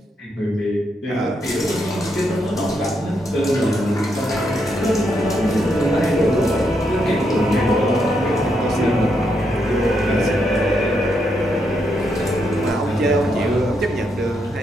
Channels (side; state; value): both; normal; correlation 0.79